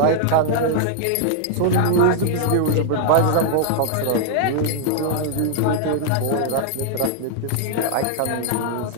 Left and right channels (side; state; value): both; different; correlation -0.01